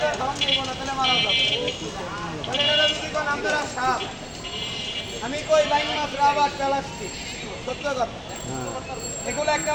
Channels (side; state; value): both; identical; correlation 1.00